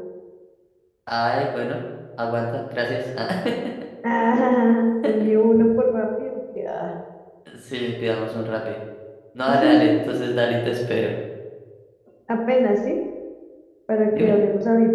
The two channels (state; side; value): identical; both; correlation 1.00